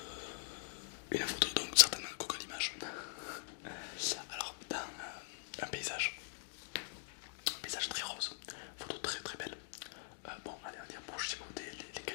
donc certainement Google Images. Alors dans un paysage très rose, photo très très belle. Bon, allez, on dire pour chipoter les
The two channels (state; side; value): silent; right; digital silence